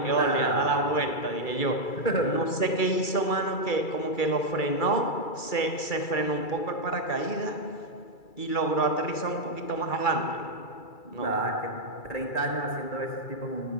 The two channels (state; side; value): late; right; 2.3 ms